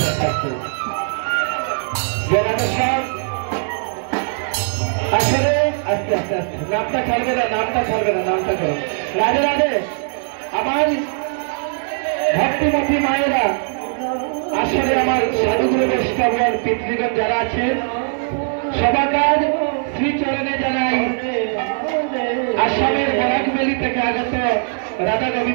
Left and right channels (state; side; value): silent; left; digital silence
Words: আসলে আস্তে আস্তে আস্তে নামটা ছাড়বে না নামটা করো রাধে রাধে আমার ভক্তিমতী মায়েরা আসলে আমার সাধুগুরু বৈষ্ণবগণ পিতৃগণ যারা আছেন সবাকার শ্রীচরণে জানাই আসামের বরাকবেলি থেকে আগত রাধা